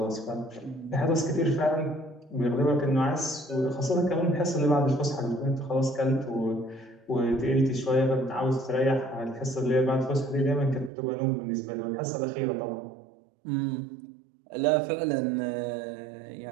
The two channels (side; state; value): left; drops out; at 10.9 s